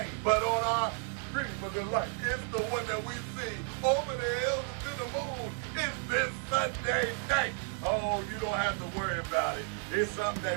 but on our cream of the light, it's the one that we see over the hills and to the moon. It's this Sunday night. Oh, you don't have to worry about it. It's something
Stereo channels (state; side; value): quieter; left; 37.1 dB